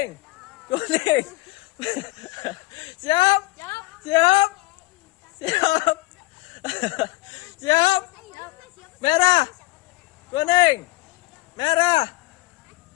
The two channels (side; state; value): right; quieter; 21.5 dB